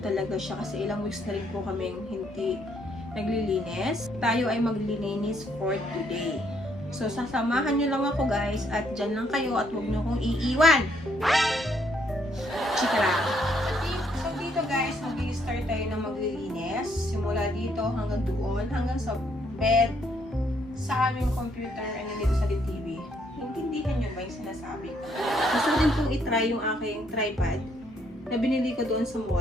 siya kasi ilang weeks na rin po kaming hindi naglilinis. Tayo ay maglilinis for today. So, sasamahan nyo lang ako guys at dyan lang kayo at huwag nyo kong iiwan. Chika lang. So, dito guys, mag-i-start tayo ng maglilinis. Simula dito hanggang doon, hanggang sa bed, sa aming computer, and dito sa TV. Intindihan nyo ba yung sinasabi ko? Gusto ko din pong itry yung aking tripod na binili ko doon sa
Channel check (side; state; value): both; normal; correlation 0.71